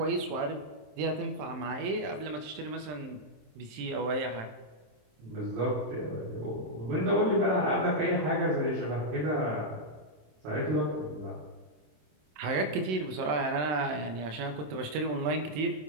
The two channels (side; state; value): left; late; 27 ms